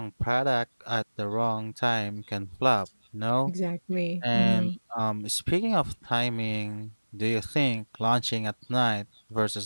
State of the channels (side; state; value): both; inverted; correlation -1.00